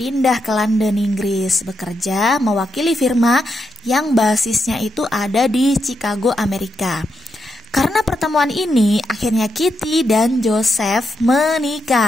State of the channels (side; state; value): both; normal; correlation 0.83